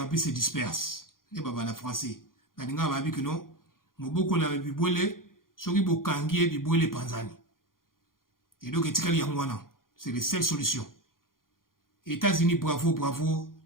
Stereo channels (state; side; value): late; right; 0.91 ms